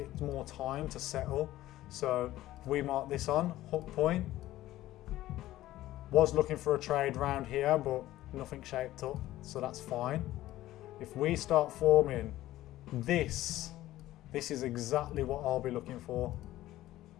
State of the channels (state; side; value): quieter; right; 15.2 dB